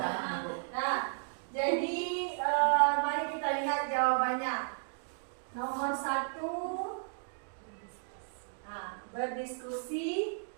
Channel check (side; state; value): left; silent; digital silence